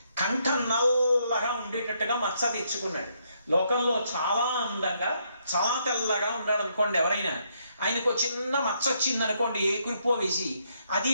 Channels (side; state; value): both; inverted; correlation -0.74